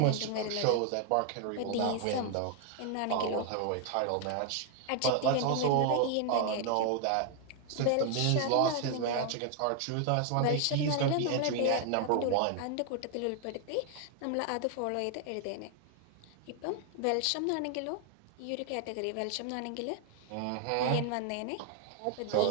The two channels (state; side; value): different; both; correlation 0.00